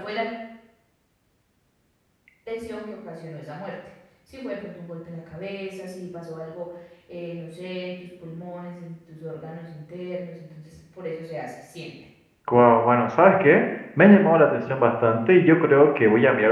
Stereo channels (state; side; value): identical; both; correlation 1.00